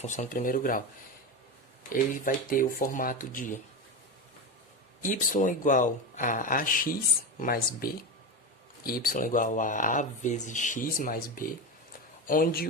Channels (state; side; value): normal; both; correlation 0.19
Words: do primeiro grau? Ele vai ter o formato de y igual a ax mais b, y igual a vezes x mais b, onde